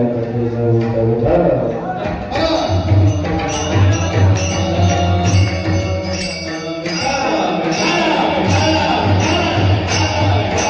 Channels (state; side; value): identical; both; correlation 1.00